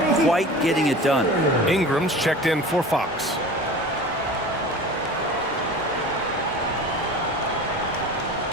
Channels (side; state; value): both; normal; correlation 0.37